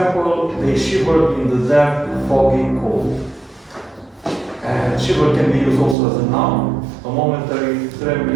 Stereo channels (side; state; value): left; drops out; at 6.0 s